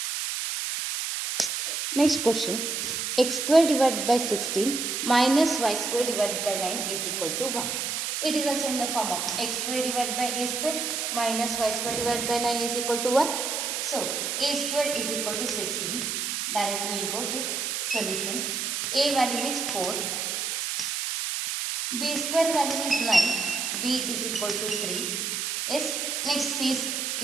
Next question. X square divided by 16 minus y square divided by 9 is equal to 1. It is also in the form of x square divided by a square minus y square divided by 9 is equal to 1. So, a square is equal to 16. Directly we will go to solution. A value is 4. B square value is 9. B is equal to 3. Yes. Next C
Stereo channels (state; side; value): noise; right; hiss, 2 dB below the sound